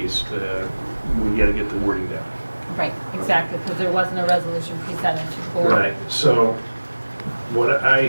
we gotta get the wording down. Right, exactly, because there wasn't a resolution presented to the board. Right, so what I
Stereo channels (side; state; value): both; inverted; correlation -1.00